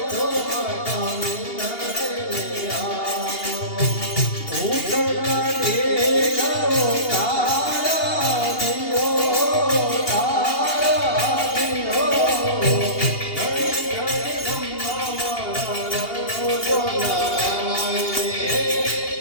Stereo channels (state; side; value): late; right; 2.8 ms